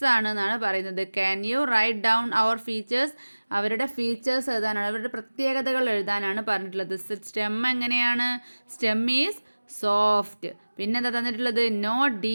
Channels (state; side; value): inverted; both; correlation -1.00